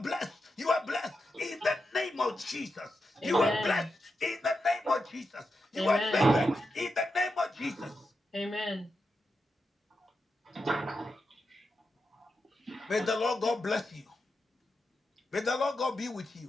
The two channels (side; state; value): both; normal; correlation 0.87